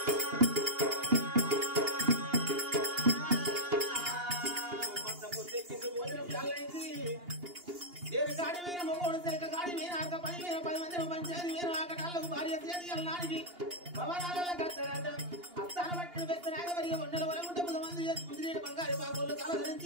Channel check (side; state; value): left; late; 2.8 ms